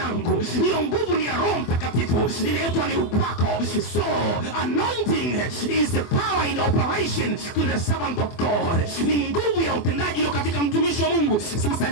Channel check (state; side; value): late; right; 24 ms